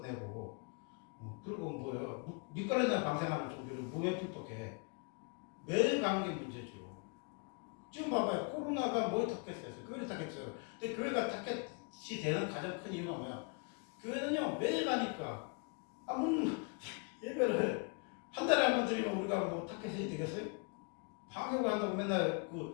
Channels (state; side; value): quieter; right; 34.9 dB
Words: 그리고 뭐야 밑가래나 방생하는 종교를 뭐에 핍박해? 매일 가는 게 문제죠. 지금 봐봐요. 코로나가 뭘 탔겠어요? 교회를 탔겠어요. 근데 교회가 타겟이 되는 가장 큰 이유가 뭐야? 교회는요 매일 가니까 예배를 한 달에 한 번 드리면 우리가 뭐 타겟이 되겠어요? 방역을 한다고 맨날